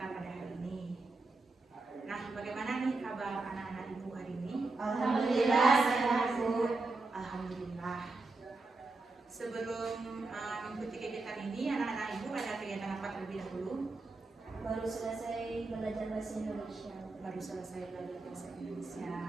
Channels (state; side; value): quieter; left; 3.5 dB